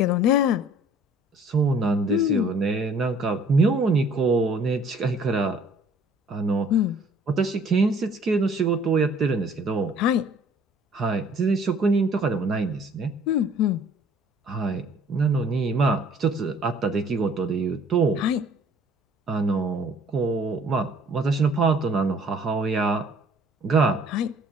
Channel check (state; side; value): normal; both; correlation 0.55